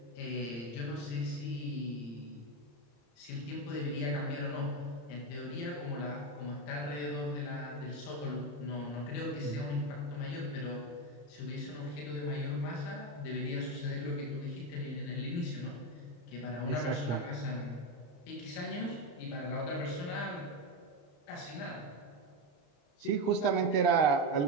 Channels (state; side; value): late; right; 34 ms